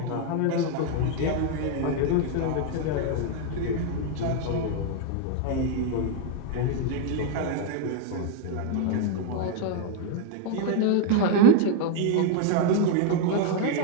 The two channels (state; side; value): different; both; correlation 0.01